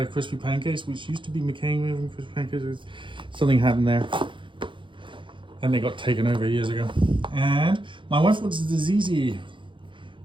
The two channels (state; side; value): late; left; 0.24 ms